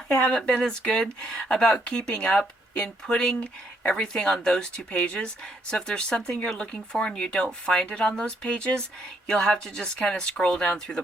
haven't been as good about keeping up in putting everything on those two pages. So if there's something you're looking for and you don't find it on those pages, you'll have to just kind of scroll down through the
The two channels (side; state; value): both; normal; correlation 0.72